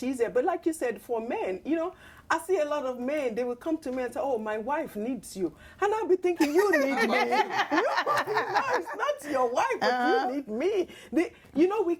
easier. But like you said, for men, you know, I see a lot of men, they will come to me and say, oh, my wife needs you. And I'll be thinking, you need me. No, it's not your wife, but you need me. You know, we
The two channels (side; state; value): both; identical; correlation 1.00